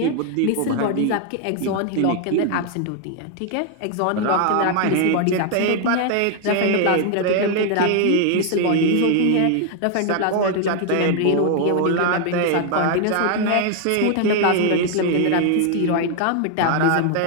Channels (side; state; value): both; different; correlation 0.00